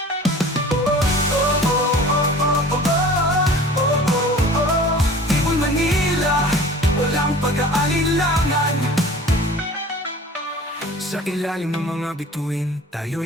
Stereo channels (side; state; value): both; normal; correlation 0.43